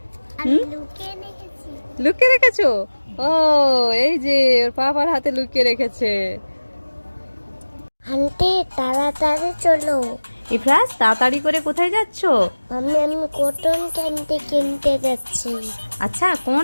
লুকিয়ে রেখেছো? ও, এই যে ওর পাপার হাতে লুকিয়ে রেখেছে। আন্টি তাড়াতাড়ি চলো। ইফরাজ, তাড়াতাড়ি করে কোথায় যাচ্ছো? আমি কটন ক্যান্ডি কিনতে যাচ্ছি। আচ্ছা, কোন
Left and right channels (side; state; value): both; inverted; correlation -1.00